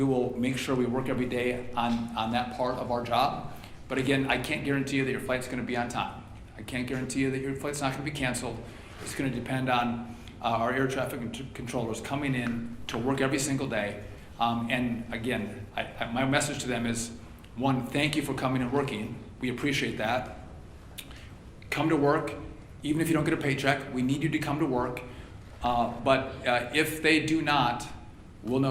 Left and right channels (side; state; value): both; identical; correlation 1.00